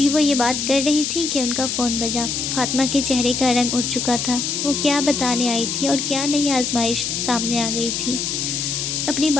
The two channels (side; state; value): left; noise; hiss, 2 dB below the sound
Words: وہ یہ بات کر رہی تھی کہ ان کا فون بجا۔ فاطمہ کے چہرے کا رنگ اٹھ چکا تھا، وہ کیا بتانے آئی تھی اور کیا نئی آزمائش سامنے آ گئی تھی۔ اپنی